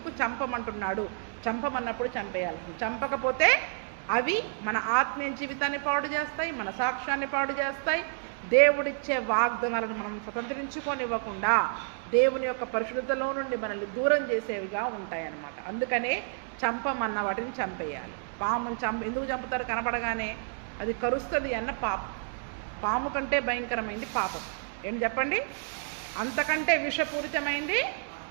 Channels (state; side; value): silent; left; digital silence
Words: చంపమంటున్నాడు? చంపమన్నప్పుడు చంపేయాల్సింది. చంపకపోతే అవి మన ఆత్మీయ జీవితాన్ని పాడు చేస్తాయి, మన సాక్ష్యాన్ని పాడు చేస్తాయి. దేవుడిచ్చే వాగ్దానాలను మనం స్వతంత్రించుకోనివ్వకుండా దేవుని యొక్క పరిశుద్ధతలో నుండి మనల్ని దూరం చేసేవిగా ఉంటాయన్నమాట. అందుకనే చంపమన్న వాటిని చంపేయాలి. పామును ఎందుకు చంపుతారు? కనపడగానే అది కరుస్తుంది అన్న పాము కంటే భయంకరమైంది పాపం. ఏం చెప్పండి? అంతకంటే విషపూరితమైంది